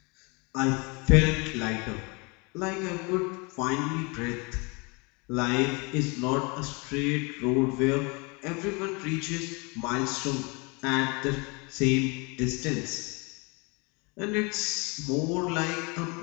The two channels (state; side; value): quieter; right; 29.5 dB